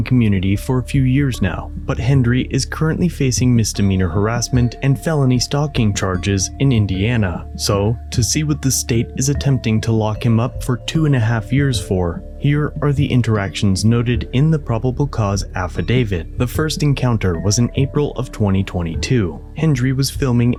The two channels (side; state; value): both; identical; correlation 1.00